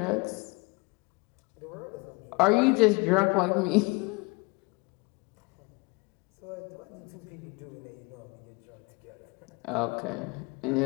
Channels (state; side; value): quieter; right; 27.3 dB